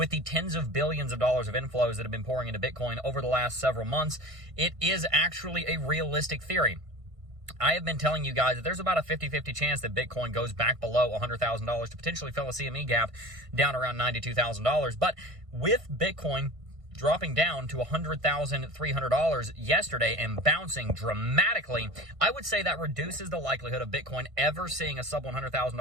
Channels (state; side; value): late; left; 1.5 ms